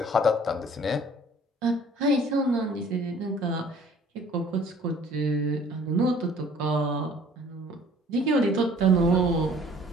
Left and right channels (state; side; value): normal; both; correlation 0.53